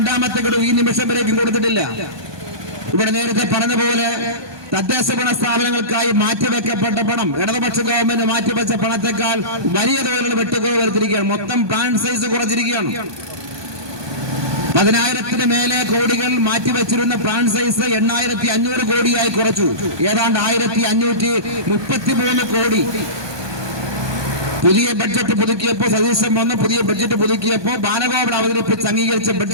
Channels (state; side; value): late; left; 1.2 ms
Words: ഗഡു ഈ നിമിഷം വരേക്കും കൊടുത്തിട്ടില്ല. ഇവിടെ നേരത്തെ പറഞ്ഞ പോലെ തദ്ദേശ ഭരണ സ്ഥാപനങ്ങൾക്കായി മാറ്റിവെക്കപ്പെട്ട പണം ഇടതുപക്ഷ ഗവൺമെന്റ് മാറ്റിവെച്ച പണത്തെക്കാൾ വലിയ തോതിലുള്ള വെട്ടുകുറവ് വരുത്തിയിരിക്കുകയാണ്. മൊത്തം പ്ലാൻ സൈസ് കുറച്ചിരിക്കുകയാണ്. 10,000-ന് മേലെ കോടികൾ മാറ്റിവെച്ചിരുന്ന പ്ലാൻ സൈസ് 8,500 കോടിയായി കുറച്ചു. ഏതാണ്ട് 1,533 കോടി. പുതിയ ബഡ്ജറ്റ് പുതുക്കിയപ്പോൾ സതീശൻ വന്ന് പുതിയ ബഡ്ജറ്റ് പുതുക്കിയപ്പോൾ ബാലഗോപാൽ അവതരിപ്പിച്ച് അംഗീകരിച്ച